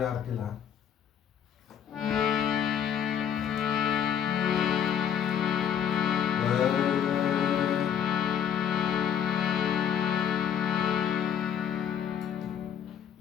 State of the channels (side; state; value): right; quieter; 8.8 dB